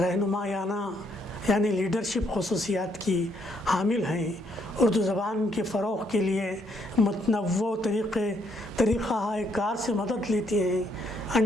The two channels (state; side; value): normal; both; correlation 0.71